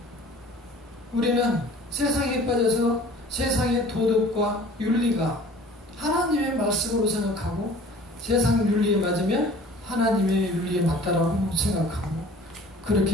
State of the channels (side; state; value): both; normal; correlation 0.47